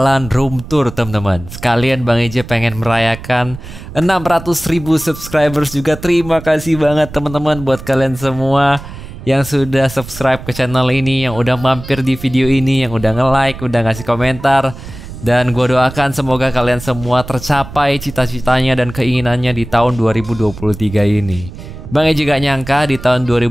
room tour teman-teman. Sekalian Bang EJ pengen merayakan 600.000 subscribers juga. Terima kasih banget teman-teman buat kalian semua yang sudah subscribe ke channel ini, yang udah mampir di video ini, yang udah nge-like, udah ngasih komentar. Dan gue doakan semoga kalian semua tercapai cita-citanya dan keinginannya di tahun 2023 ini. Bang EJ gak nyangka di tahun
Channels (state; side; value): noise; right; rumble, 13 dB below the sound